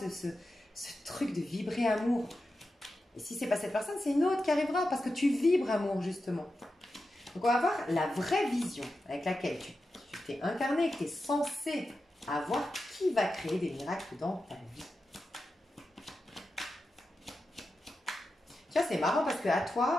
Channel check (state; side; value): normal; both; correlation 0.91